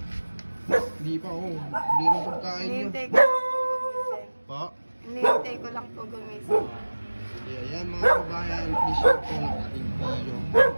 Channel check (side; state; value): both; inverted; correlation -1.00